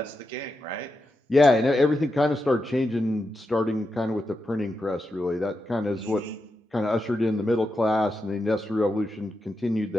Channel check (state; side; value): normal; both; correlation 0.87